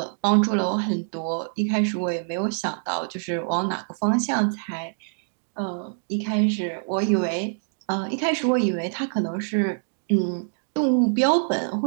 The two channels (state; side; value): silent; left; digital silence